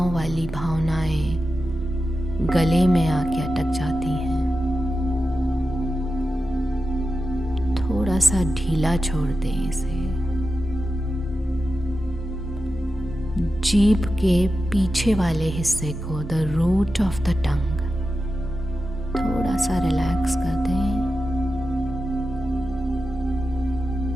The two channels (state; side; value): normal; both; correlation 0.91